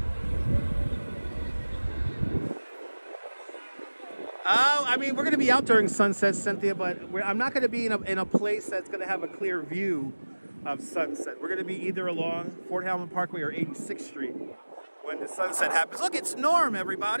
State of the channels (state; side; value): inverted; both; correlation -1.00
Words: I mean, we're going to be out during sunset, Cynthia, but I'm not going to be in a place that's going to have a clear view of sunset. We're going to be either along Fort Hamilton Parkway or 86th Street when the sunset happens. Look, it's Norm,